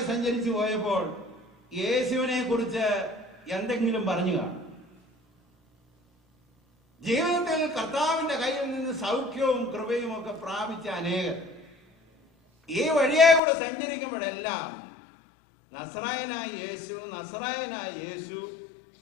സഞ്ചരിച്ചു പോയപ്പോൾ യേശുവിനെ കുറിച്ച് എന്തെങ്കിലും പറഞ്ഞു കാണും. ജീവിതത്തിൽ കർത്താവിന്റെ കയ്യിൽ നിന്ന് സൗഖ്യവും കൃപയും ഒക്കെ പ്രാപിച്ച അനേകർ ഈ വഴിയെ കൂടെ സഞ്ചരിക്കുമ്പോഴെല്ലാം നസറായനായ യേശു, നസറായനായ യേശു,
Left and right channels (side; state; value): right; drops out; at 13.4 s